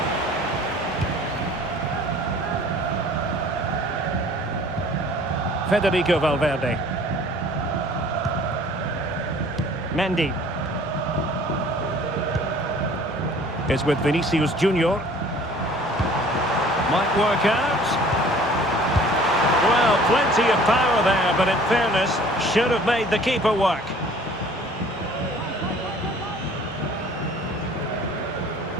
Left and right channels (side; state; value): both; normal; correlation 0.51